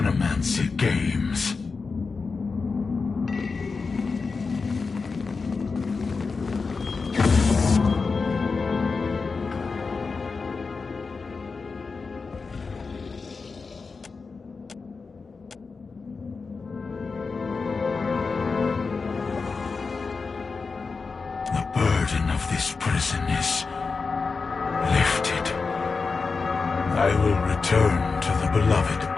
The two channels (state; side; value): quieter; right; 4.6 dB